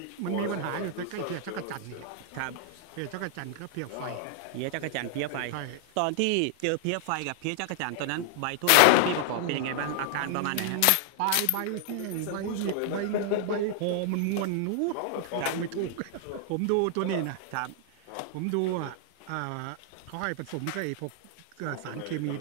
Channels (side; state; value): both; different; correlation 0.00